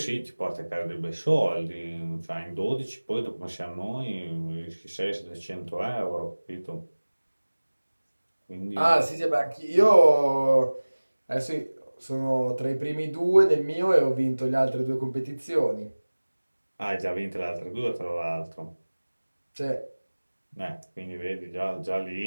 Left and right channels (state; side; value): inverted; both; correlation -1.00